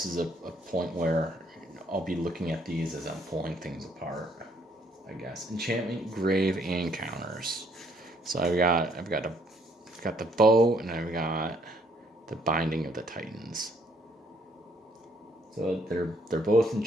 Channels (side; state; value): both; normal; correlation 0.67